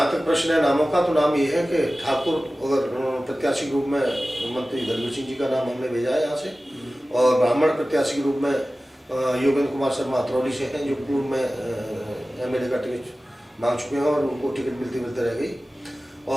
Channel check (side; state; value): both; normal; correlation 0.96